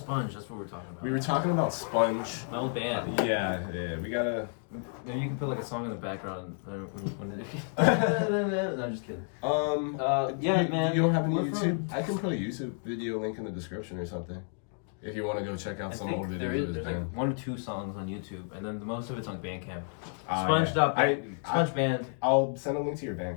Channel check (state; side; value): silent; right; 57 dB below the other